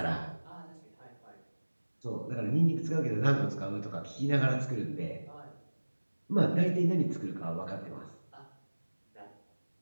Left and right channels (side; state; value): both; inverted; correlation -1.00